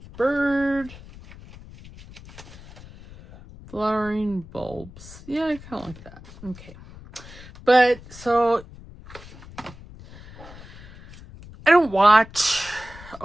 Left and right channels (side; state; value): left; noise; rumble, 18 dB below the sound